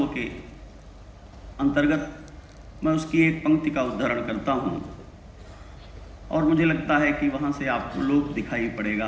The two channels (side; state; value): both; identical; correlation 1.00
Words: के अंतर्गत मैं उसकी एक पंक्ति का उद्धरण करता हूँ और मुझे लगता है कि वहाँ से आपको लोक दिखाई